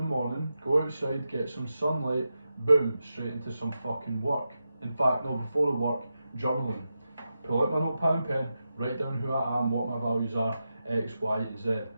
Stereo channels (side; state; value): both; inverted; correlation -0.89